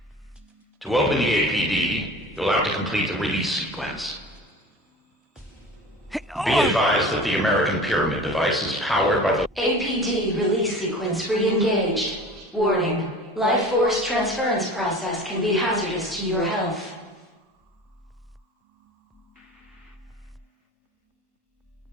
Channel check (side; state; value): both; normal; correlation 0.39